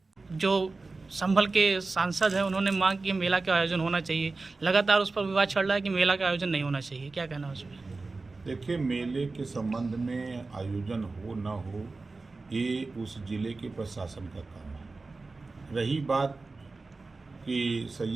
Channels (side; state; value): left; quieter; 3.7 dB